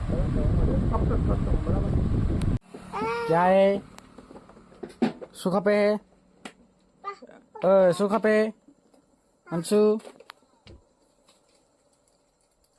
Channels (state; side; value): identical; both; correlation 1.00